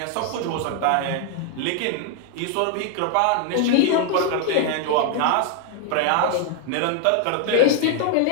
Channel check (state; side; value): different; both; correlation 0.00